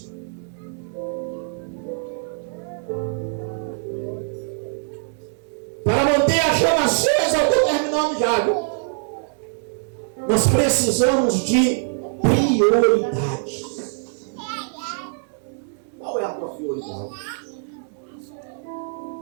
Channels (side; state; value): left; silent; 63 dB below the other